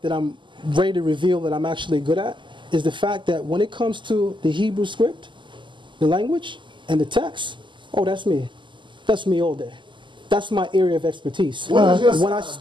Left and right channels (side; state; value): left; late; 0.24 ms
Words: that I'm ready to reveal that I'm actually good at is the fact that when it comes to the Hebrew script, the language, and the text, oh, that's me. That's me all day. That's my area of expertise. When I